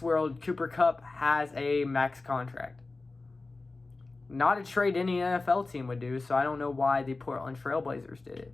world, Cooper Kupp has a max contract. Not a trade any NFL team would do, so I don't know why the Portland Trailblazers did it.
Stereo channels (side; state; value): right; quieter; 3.5 dB